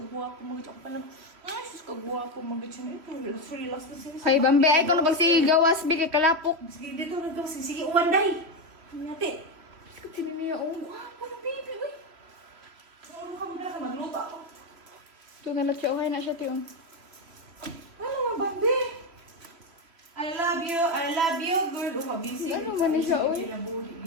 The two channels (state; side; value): late; left; 3.0 ms